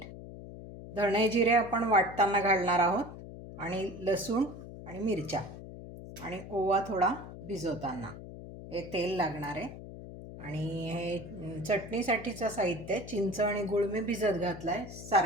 धणे जिरे आपण वाटताना घालणार आहोत, आणि लसूण आणि मिरच्या आणि ओवा थोडा भिजवताना. हे तेल लागणार आहे. आणि हे चटणीसाठीचं साहित्य, चिंच आणि गूळ मी भिजत घातला आहे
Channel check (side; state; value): left; noise; hum, 13 dB below the sound